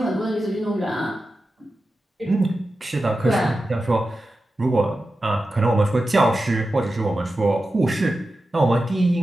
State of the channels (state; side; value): normal; both; correlation 0.92